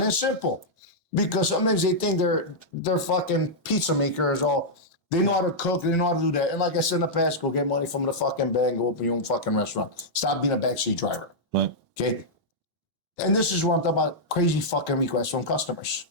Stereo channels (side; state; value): both; normal; correlation -0.08